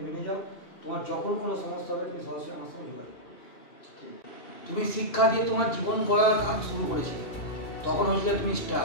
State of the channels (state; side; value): late; right; 2.7 ms